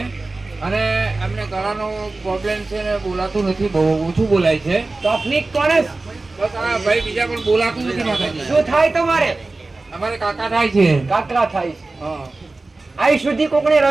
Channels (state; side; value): quieter; left; 3.3 dB